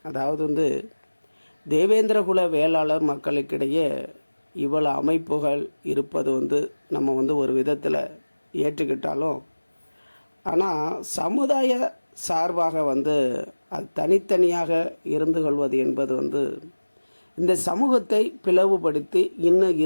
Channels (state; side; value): inverted; both; correlation -1.00